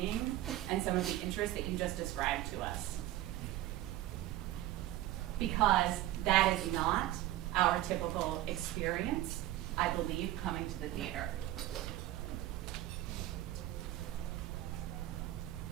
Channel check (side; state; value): left; quieter; 14.9 dB